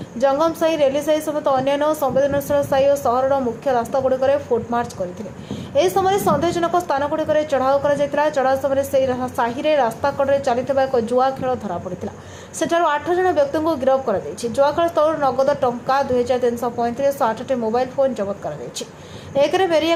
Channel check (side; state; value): both; identical; correlation 1.00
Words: ଜଙ୍ଗମସାହି, ରେଲିସାହି ସମେତ ଅନ୍ୟାନ୍ୟ ସମ୍ବେଦନଶୀଳ ସାହି ଓ ସହରର ମୁଖ୍ୟ ରାସ୍ତାଗୁଡ଼ିକରେ ଫୁଟମାର୍ଚ୍ଚ କରିଥିଲେ। ଏହି ସମୟରେ ସନ୍ଦେହଜନକ ସ୍ଥାନଗୁଡ଼ିକରେ ଚଢ଼ାଉ କରାଯାଇଥିଲା। ଚଢ଼ାଉ ସମୟରେ ସେହି ସାହିରେ ରାସ୍ତା କଡ଼ରେ ଚାଲିଥିବା ଏକ ଜୁଆ ଖେଳ ଧରାପଡ଼ିଥିଲା। ସେଠାରୁ 8 ଜଣ ବ୍ୟକ୍ତିଙ୍କୁ ଗିରଫ କରାଯାଇଛି। ଜୁଆଖେଳ ସ୍ଥଳରୁ ନଗଦ ଟଙ୍କା 2335 ଓ 8ଟି ମୋବାଇଲ ଫୋନ୍ ଜବତ କରାଯାଇଛି। ଏକରେ